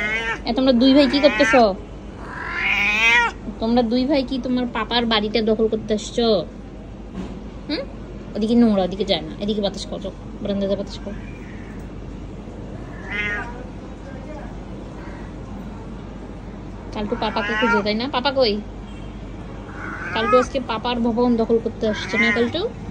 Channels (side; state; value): both; identical; correlation 1.00